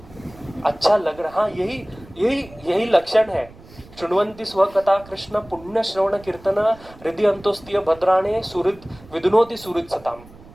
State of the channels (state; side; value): noise; right; rumble, 21 dB below the sound